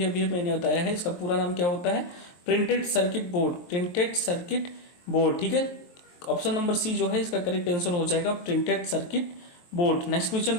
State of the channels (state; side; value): late; right; 23 ms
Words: अभी मैंने बताया है, इसका पूरा नाम क्या होता है? Printed circuit board. Printed circuit board. ठीक है, ऑप्शन नंबर सी जो है इसका करेक्ट आंसर हो जाएगा printed circuit board. Next question